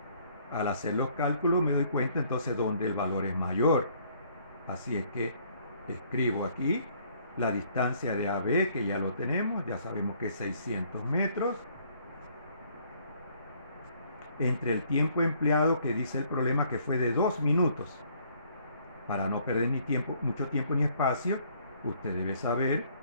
Al hacer los cálculos me doy cuenta entonces dónde el valor es mayor. Así es que escribo aquí la distancia de AB, que ya lo tenemos, ya sabemos que es 600 metros, entre el tiempo empleado, que dice el problema que fue de 2 minutos. Para no perder mucho tiempo ni espacio, usted debe saber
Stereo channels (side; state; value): both; inverted; correlation -0.63